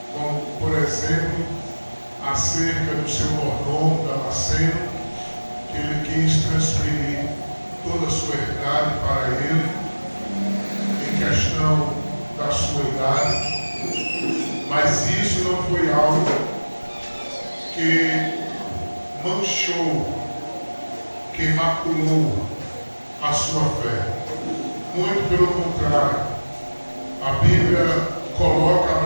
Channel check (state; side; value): inverted; both; correlation -1.00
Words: como por exemplo acerca do seu mordomo Damasceno, que ele quis transferir toda a sua herdade para ele, em questão da sua idade, mas isso não foi algo que manchou, que maculou a sua fé. Muito pelo contrário, a Bíblia coloca